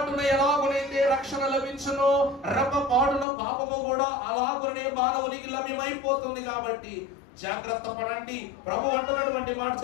ఎలాగునైతే రక్షణ లభించును, రెప్పపాటున పాపము కూడా అలాగునే మానవునికి లభ్యమైపోతుంది. కాబట్టి జాగ్రత్త పడండి. ప్రభు అంటున్నటువంటి మాట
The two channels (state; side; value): drops out; right; at 3.2 s